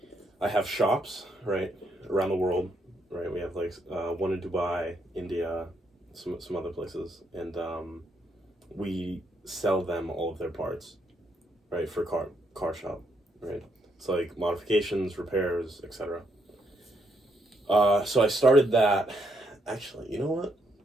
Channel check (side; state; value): both; normal; correlation 0.75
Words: have shops, right, around the world, right? We have like one in Dubai, India, some other places, and we sell them all of their parts, right, for car shop, right? It's like modifications, repairs, etc. So I started that. Actually, you know what?